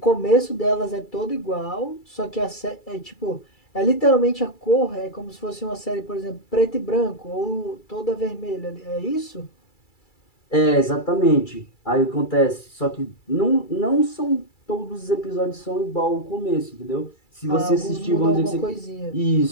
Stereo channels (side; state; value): right; late; 2.3 ms